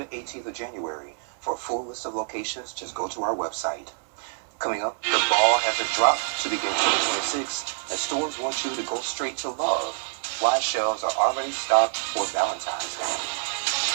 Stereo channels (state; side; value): silent; left; digital silence